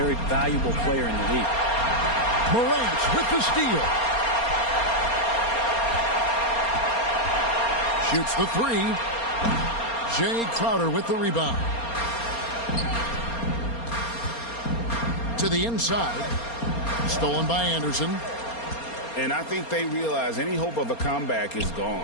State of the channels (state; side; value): late; right; 4.3 ms